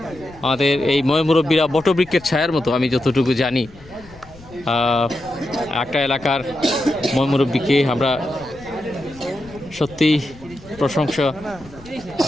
আমাদের এই মুরব্বীরা বটবৃক্ষের ছায়ার মতো, আমি যতটুকু জানি। একটা এলাকার মুরব্বীকে আমরা সত্যিই প্রশংসা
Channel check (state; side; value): noise; left; rumble, 21 dB below the sound